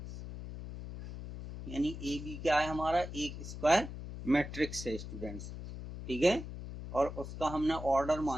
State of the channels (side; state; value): left; noise; hum, 9 dB below the sound